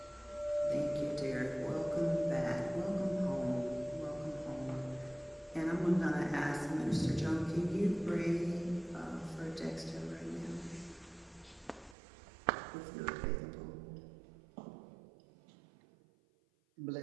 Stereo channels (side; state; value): left; drops out; at 12.0 s